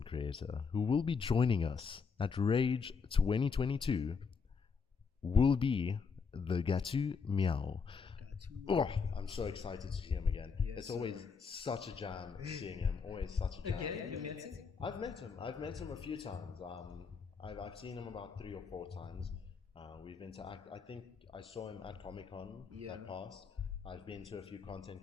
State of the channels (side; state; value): right; quieter; 5.5 dB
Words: creator who will be joining us at Rage 2022 will be the Gatu Meow. Oh, I'm so excited to see him again. It's always such a jam seeing him. Always such a jam. You met him? I've met him a few times. I've seen him about 3 or 4 times. We've interacted. I think I saw him at Comic-Con that passed. I've been to a few